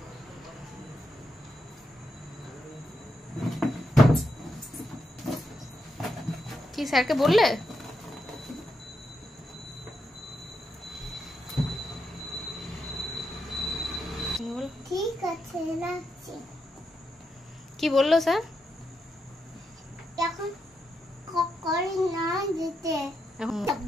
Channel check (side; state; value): both; normal; correlation 0.83